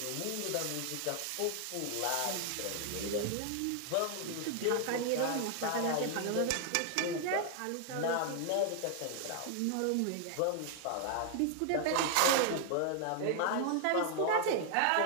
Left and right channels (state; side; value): different; both; correlation 0.00